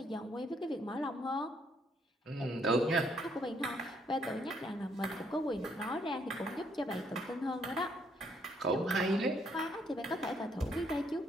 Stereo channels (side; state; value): both; normal; correlation 0.70